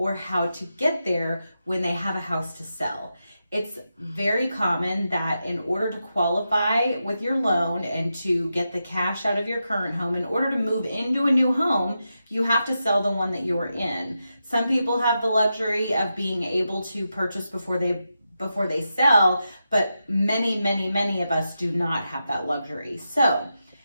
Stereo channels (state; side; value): inverted; both; correlation -0.88